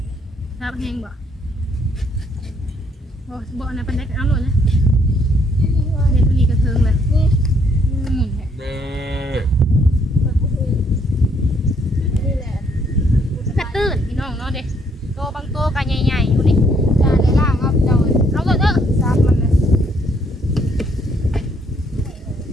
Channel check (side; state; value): both; normal; correlation 0.68